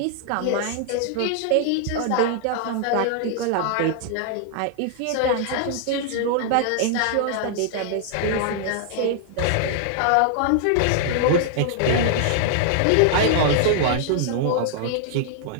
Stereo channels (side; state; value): both; different; correlation -0.01